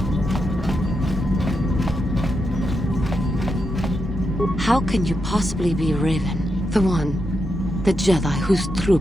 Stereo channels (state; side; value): normal; both; correlation 0.85